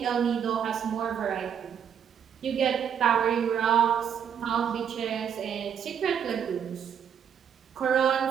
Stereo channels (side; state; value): left; quieter; 8.2 dB